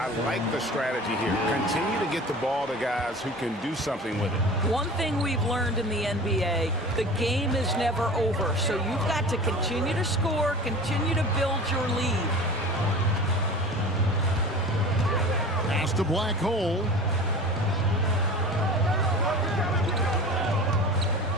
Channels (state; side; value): normal; both; correlation 0.37